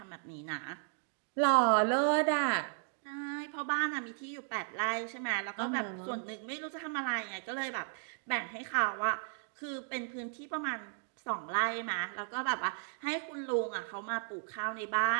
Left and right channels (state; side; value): silent; left; 54 dB below the other